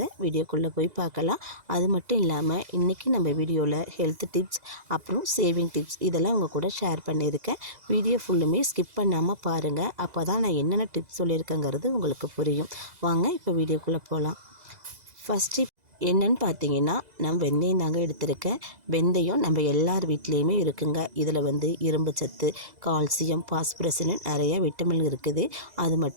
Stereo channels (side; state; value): left; late; 2.0 ms